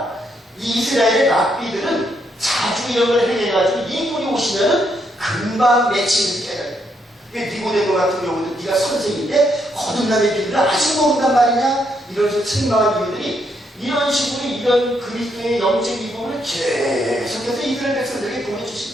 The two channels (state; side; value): normal; both; correlation 0.76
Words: 이스라엘의 랍비들은 자주형을 행해가지고 이분이 오시면은 금방 맺히는 깨달아요. 니고데모 같은 경우도 네가 선생인데 거듭남의 비밀을 아직 모른단 말이냐? 이런 식으로 책망한 이유들이 이런 식으로 이런 그리스도의 영적 이부분을 계속해서 이스라엘 백성들에게